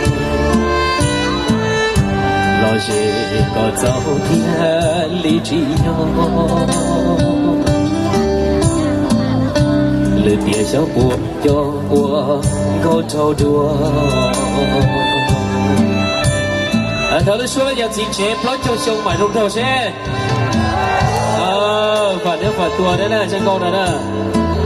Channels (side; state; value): both; identical; correlation 1.00